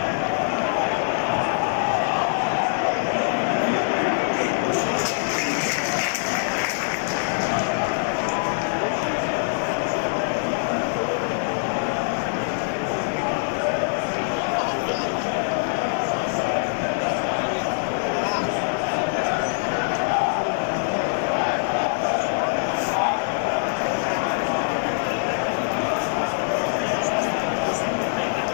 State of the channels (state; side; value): silent; right; digital silence